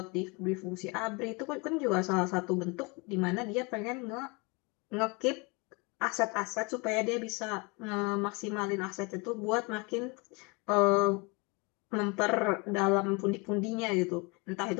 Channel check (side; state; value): right; quieter; 29.0 dB